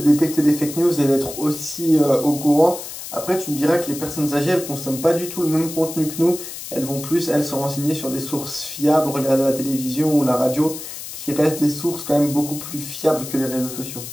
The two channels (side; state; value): left; noise; hiss, 10 dB below the sound